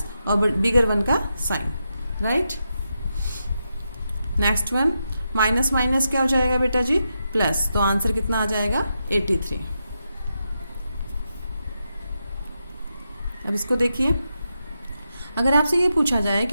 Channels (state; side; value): inverted; both; correlation -0.86